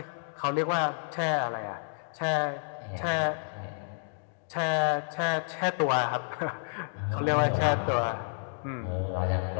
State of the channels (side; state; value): right; silent; digital silence